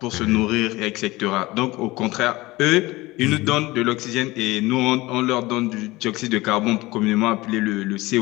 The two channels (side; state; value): right; quieter; 20.3 dB